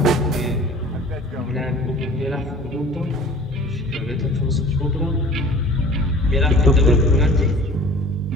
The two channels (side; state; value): both; normal; correlation 0.46